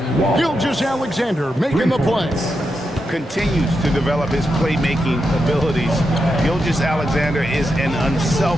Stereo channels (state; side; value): normal; both; correlation 0.86